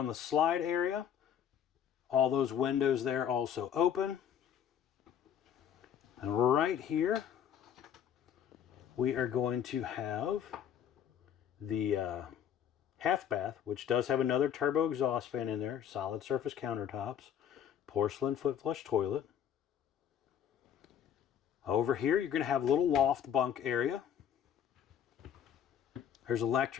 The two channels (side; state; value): right; quieter; 9.1 dB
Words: the slide area. All those windows there also open. And right here, we are going to have the half bath, which does have another turbo exhaust fan in there, solid surface countertops, porcelain foot flush toilet. Over here, you're going to have a little loft bunk area. There's